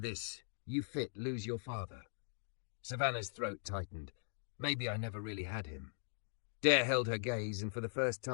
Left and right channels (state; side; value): silent; right; digital silence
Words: You fit, lose your father." Savannah's throat tightened. Maybe I never really had him. Dare held her gaze, and for the first